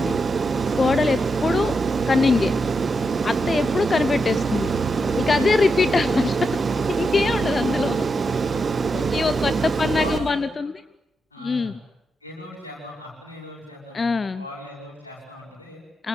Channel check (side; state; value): both; normal; correlation 0.85